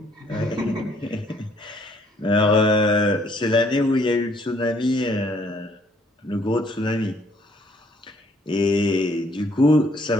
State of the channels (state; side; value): normal; both; correlation 0.64